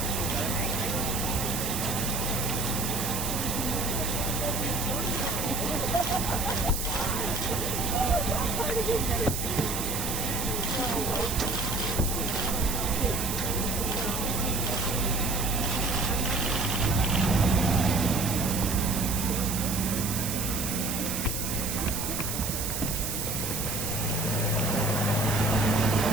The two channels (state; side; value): noise; right; hiss, 3 dB below the sound